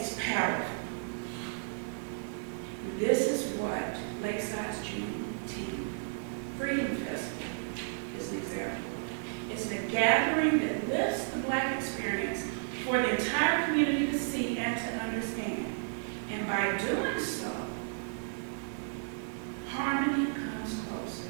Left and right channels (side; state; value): left; silent; digital silence